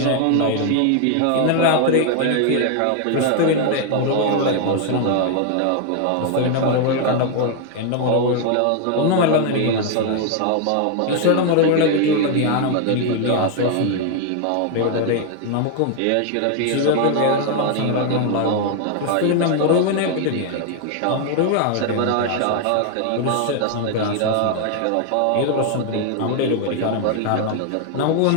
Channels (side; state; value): both; different; correlation 0.00